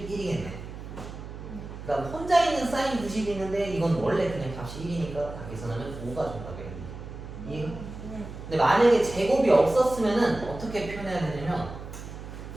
그다음 혼자 있는 사인 90이 있는데 이건 원래 그냥 값이 1이니까 다 계산하면 5가 정답이겠네. 이해가? 근데 만약에 제곱이 없었으면은 어떻게 표현해야 되냐면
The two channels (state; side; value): noise; right; hum, 11 dB below the sound